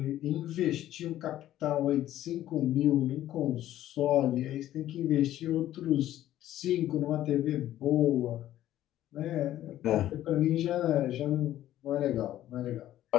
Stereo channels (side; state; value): right; quieter; 13.1 dB